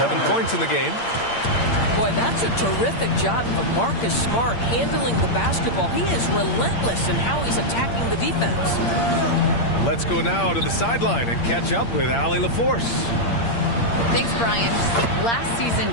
points in the game. Boy, that's a terrific job of Marcus Smart handling the basketball. He is relentless in how he's attacking the defense. Let's go now to the sideline and catch up with Allie LaForce. Thanks, Brian. Last season,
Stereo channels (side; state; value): right; late; 8.7 ms